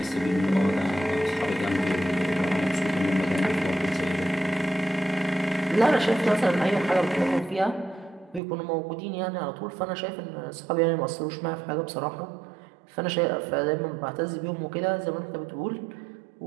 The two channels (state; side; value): drops out; left; at 8.4 s